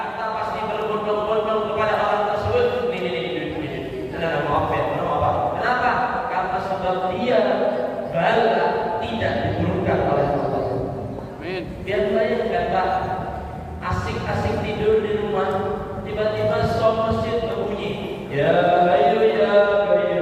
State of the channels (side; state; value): both; identical; correlation 1.00